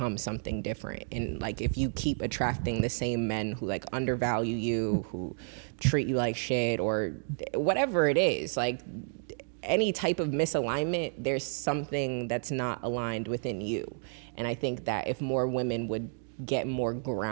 something different. And like, if you keep attracting the same men who like undervalue you, who treat you like shit, or whatever it is, like any type of misalignment, there's something that's not aligned within you. And I think that if more women would get more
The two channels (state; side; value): silent; left; 56 dB below the other